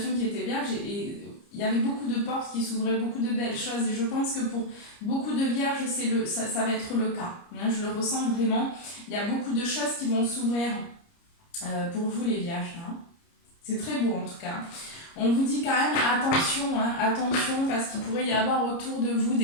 qui était vierge et il y avait beaucoup de portes qui s'ouvraient, beaucoup de belles choses et je pense que pour beaucoup de vierges, ça va être le cas. Je le ressens vraiment. Il y a beaucoup de choses qui vont s'ouvrir pour vous les vierges. C'est très beau en tout cas. On vous dit quand même attention, attention parce qu'il pourrait y avoir autour de vous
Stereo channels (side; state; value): right; late; 30 ms